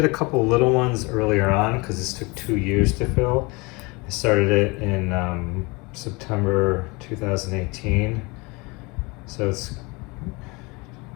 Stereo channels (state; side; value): quieter; right; 26.5 dB